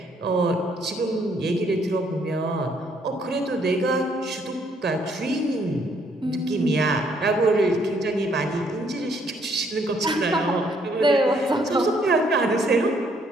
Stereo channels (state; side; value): normal; both; correlation 0.68